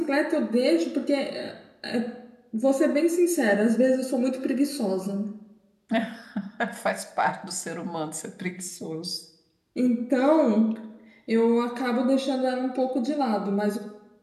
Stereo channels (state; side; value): identical; both; correlation 1.00